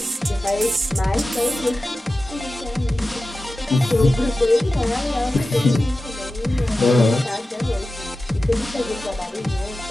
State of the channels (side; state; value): both; normal; correlation 0.94